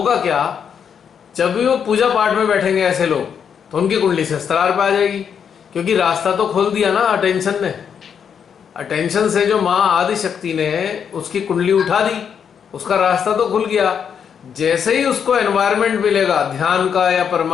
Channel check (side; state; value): right; quieter; 7.5 dB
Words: क्या, जब भी वो पूजा पाठ में बैठेंगे ऐसे लोग, तो उनकी कुंडली से स्त्रार पे आ जाएगी, क्योंकि रास्ता तो खोल दिया ना अटेंशन ने। अटेंशन से जो माँ आदि शक्ति ने उसकी कुंडली उठा दी, उसका रास्ता तो खुल गया। जैसे ही उसको एनवायरनमेंट मिलेगा ध्यान का या